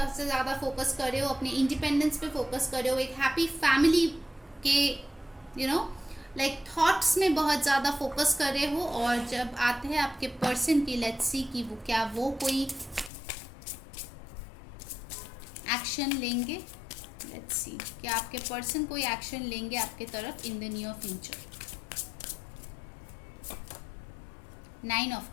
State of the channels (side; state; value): right; drops out; at 13.1 s